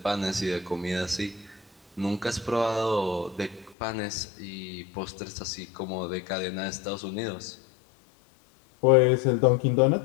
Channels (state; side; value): drops out; right; at 3.8 s